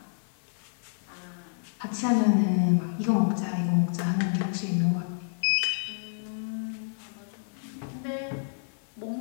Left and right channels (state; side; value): silent; right; 58 dB below the other